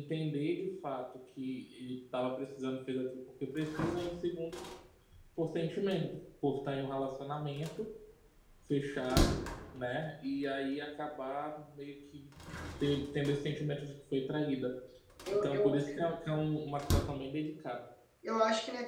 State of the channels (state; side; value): identical; both; correlation 1.00